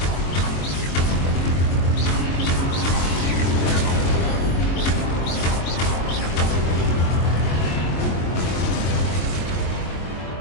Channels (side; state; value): right; late; 23 ms